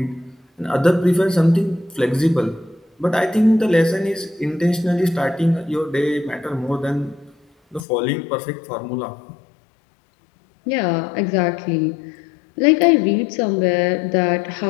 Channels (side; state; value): right; drops out; at 7.9 s